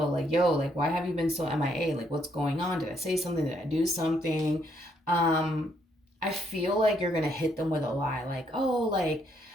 like, yo, like, why have you been so MIA? Like, what's going on? Did I say something? Did I do something? I feel like you're going to hit them with a lie. Like, oh, like,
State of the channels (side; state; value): both; normal; correlation 0.72